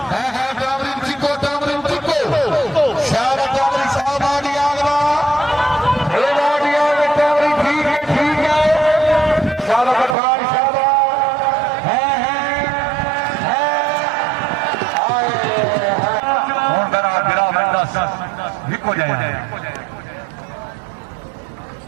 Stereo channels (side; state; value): left; drops out; at 10.2 s